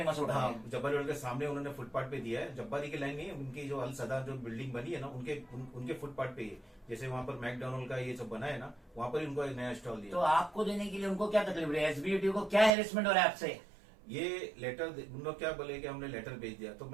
होटल हाँ है। जब्बारी होटल के सामने उन्होंने फुटपाथ पे दिया है। जब्बारी की लाइन नहीं है, उनकी जो अल सदा जो बिल्डिंग बनी है ना, उनके फुटपाथ पे ही है। जैसे वहाँ पर मैकडोनल्ड का ये सब बना है ना, वहाँ पर उनको एक नया स्टॉल दिया। तो आपको देने के लिए उनको क्या तकलीफ है? एसबीयूटी को क्या हेरेसमेंट हो रहा है आपसे? ये लेटर उन लोग क्या बोले कि हमने लेटर भेज दिया, तो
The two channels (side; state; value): left; drops out; at 12.7 s